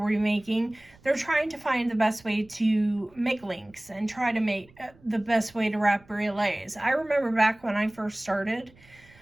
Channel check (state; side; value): noise; right; rumble, 27 dB below the sound